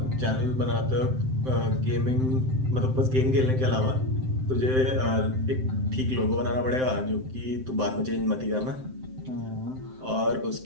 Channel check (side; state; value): left; late; 7.7 ms